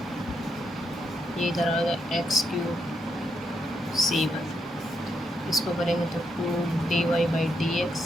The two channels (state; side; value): normal; both; correlation 0.81